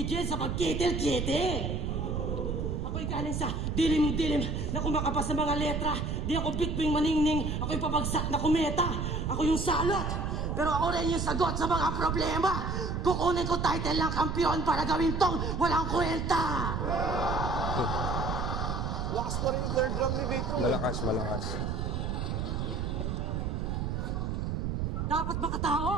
sa pagkitil-kitil. Ako'y galing sa dilim-dilim na kumakapas sa mga letra. Di ako bitwing maningning, ako'y pabagsak na kumeta. Ako yung salot, pero ako rin yung sagot sa mga problema. Kukunin ko title ng kampiyon para gawin tong walang kwenta. Lakas pa rin yung third round ni Vitrum. Malakas. Dapat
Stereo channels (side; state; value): right; noise; rumble, 1 dB below the sound